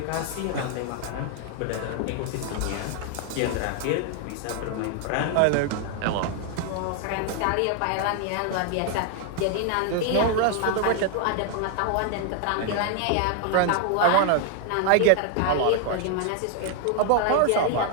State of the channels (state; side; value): different; both; correlation 0.00